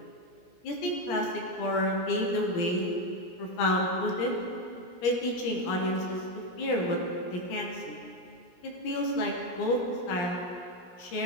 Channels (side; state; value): right; late; 17 ms